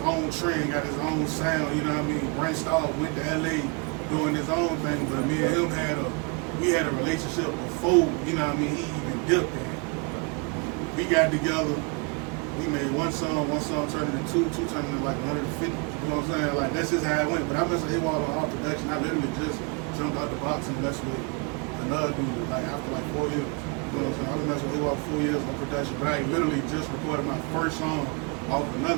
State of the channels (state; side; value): quieter; left; 31.6 dB